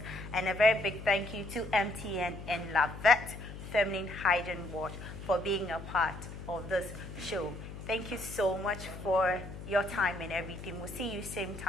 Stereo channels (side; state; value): left; noise; hum, 11 dB below the sound